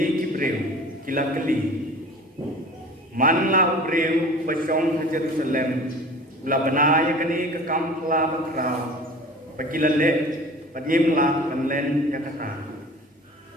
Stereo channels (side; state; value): both; normal; correlation 0.41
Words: kibreu kilakeli. Manla ubreu pasong Jerusalem ula banaya kani ke kampla bakra pakilale padimla kanlen yakata